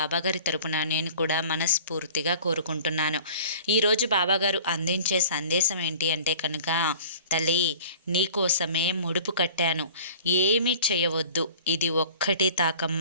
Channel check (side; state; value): both; inverted; correlation -0.45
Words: తరపున నేను కూడా మనస్ఫూర్తిగా కోరుకుంటున్నాను. ఈరోజు బాబాగారు అందించే సందేశం ఏంటి అంటే కనుక, తల్లి నీకోసమే ముడుపు కట్టాను, ఏమీ చేయవద్దు, ఇది ఒక్కటి